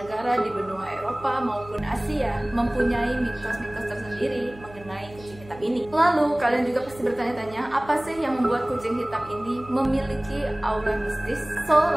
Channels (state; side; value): noise; right; hum, 20 dB below the sound